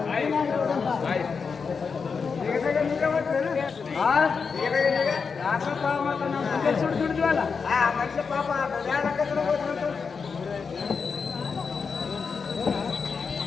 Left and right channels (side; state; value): right; quieter; 5.5 dB